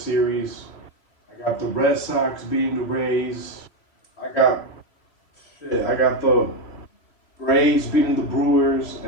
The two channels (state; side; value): late; right; 3.0 ms